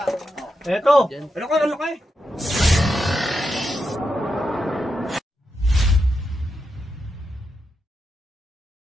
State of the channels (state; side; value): normal; both; correlation 0.86